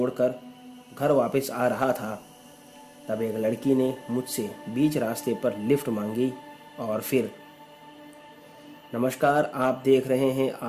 घर वापस आ रहा था, तब एक लड़की ने मुझसे बीच रास्ते पर लिफ्ट मांगी और फिर नमस्कार, आप देख रहे हैं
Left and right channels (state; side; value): identical; both; correlation 1.00